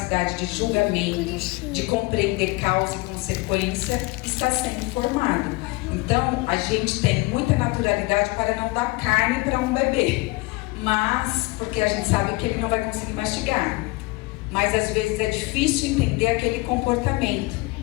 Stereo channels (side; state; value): right; quieter; 23.9 dB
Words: de julgamento, de compreender causa e consequência, está sendo formada. Então, a gente tem muita naturalidade para não dar carne para um bebê, mas porque a gente sabe que ele não vai conseguir mastigar. Mas às vezes é difícil entender aquele comportamento,